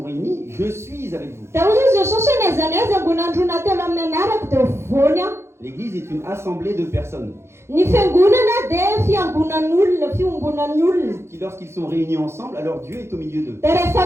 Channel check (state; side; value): late; left; 0.13 ms